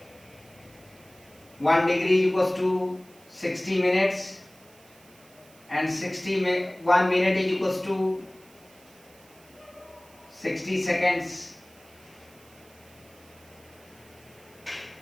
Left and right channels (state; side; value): noise; right; hiss, 26 dB below the sound